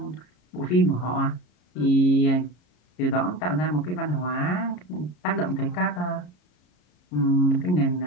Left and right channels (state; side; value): late; right; 33 ms